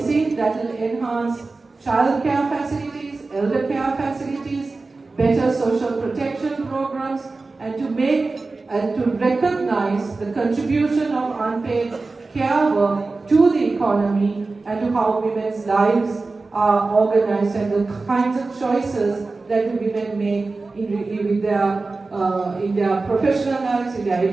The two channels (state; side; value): quieter; left; 3.7 dB